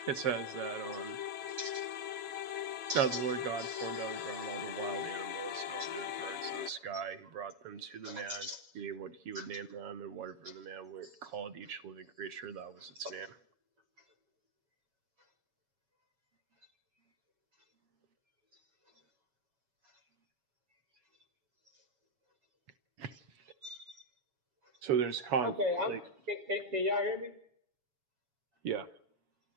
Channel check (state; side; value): late; left; 7.2 ms